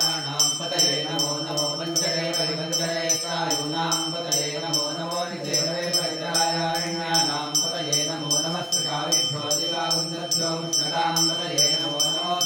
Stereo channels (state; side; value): identical; both; correlation 1.00